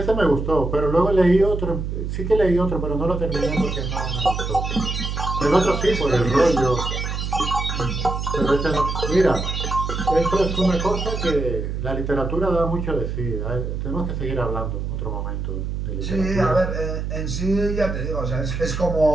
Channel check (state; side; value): noise; right; hum, 3 dB below the sound